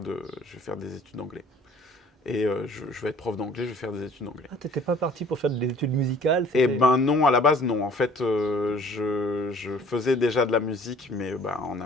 études d'anglais. Et je vais être prof d'anglais, je vais faire des études d'anglais. Ah, t'étais pas parti pour faire des études musicales, Eh c'était. ben non, à la base, non. En fait, je faisais déjà de la musique, mais bah, en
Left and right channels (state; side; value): normal; both; correlation 0.53